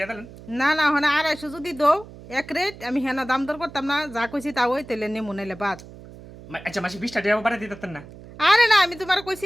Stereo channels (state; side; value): noise; right; hum, 17 dB below the sound